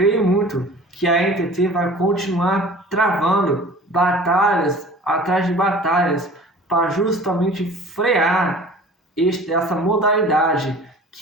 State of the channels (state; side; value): normal; both; correlation 0.44